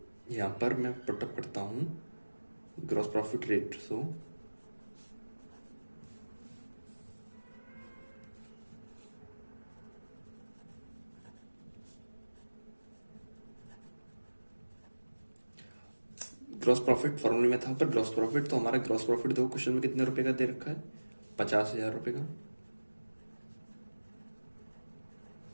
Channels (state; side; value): inverted; both; correlation -1.00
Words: यहाँ पर मैं पुटअप करता हूँ gross profit ratio gross profit फॉर्मूले में था पर ग्रॉस प्रॉफिट। तो हमारा ग्रॉस प्रॉफिट देखो क्वेश्चन में कितने रुपए का दे रखा है, 50,000 रुपए का,